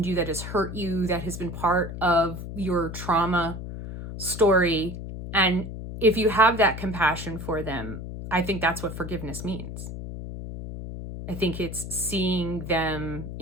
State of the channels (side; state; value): left; noise; hum, 8 dB below the sound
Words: you, that has hurt you, that has been part of your trauma story? And if you have that compassion for them, I think that's what forgiveness means. I think it's seeing them